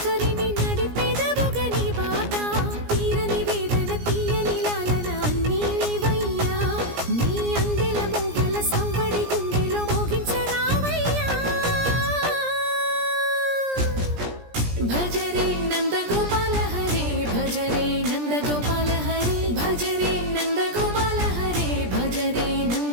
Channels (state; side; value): late; left; 17 ms